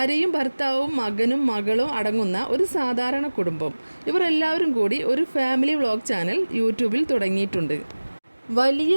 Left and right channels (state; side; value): inverted; both; correlation -1.00